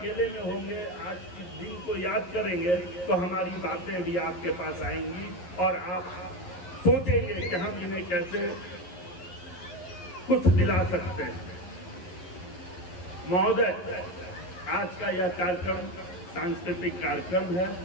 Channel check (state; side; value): late; right; 11 ms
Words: में होंगे, आज के दिन को याद करेंगे, तो हमारी बातें भी आपके पास आएंगी और आप सोचेंगे कि हम इन्हें कैसे कुछ दिला सकते हैं। महोदय, आज का यह कार्यक्रम सांस्कृतिक कार्यक्रम है,